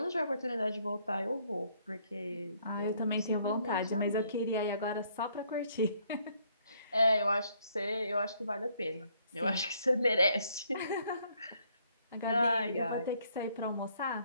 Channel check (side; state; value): both; inverted; correlation -0.68